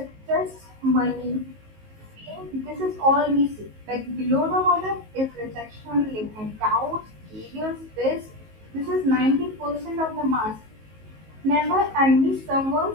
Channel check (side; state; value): left; late; 19 ms